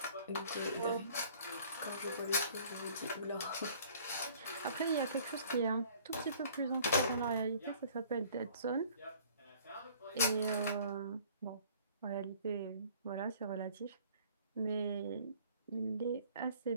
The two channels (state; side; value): inverted; both; correlation -0.53